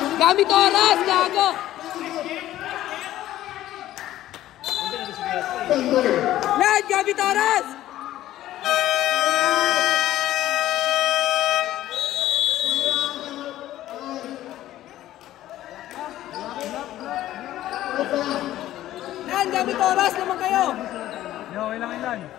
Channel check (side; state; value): right; quieter; 13.9 dB